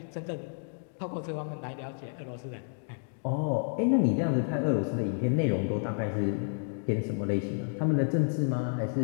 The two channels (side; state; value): right; silent; digital silence